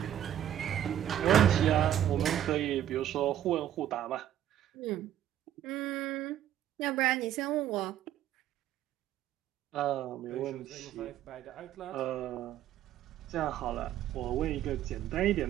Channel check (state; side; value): quieter; left; 11.4 dB